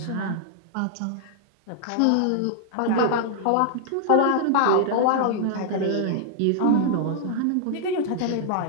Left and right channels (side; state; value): both; different; correlation -0.01